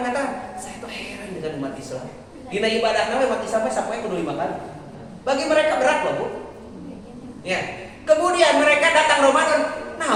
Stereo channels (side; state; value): both; identical; correlation 1.00